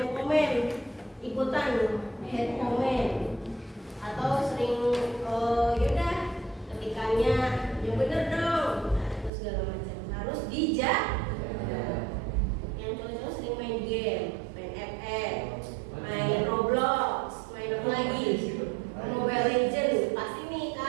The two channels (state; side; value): drops out; left; at 9.3 s